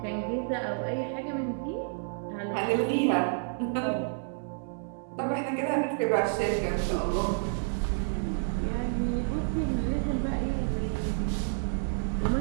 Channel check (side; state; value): left; silent; digital silence